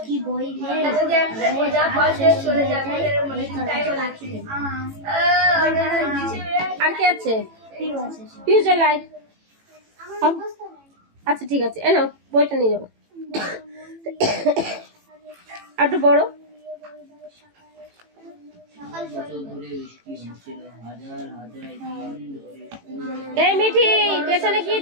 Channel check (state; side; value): late; left; 18 ms